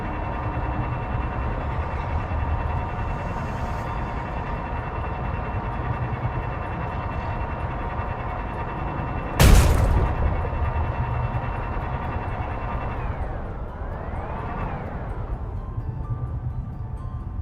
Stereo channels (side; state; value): both; identical; correlation 1.00